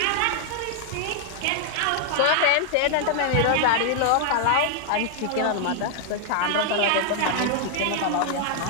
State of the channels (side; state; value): both; different; correlation 0.00